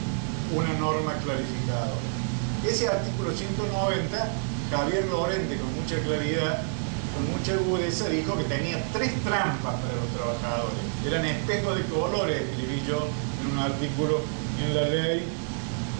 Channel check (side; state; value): left; silent; 59 dB below the other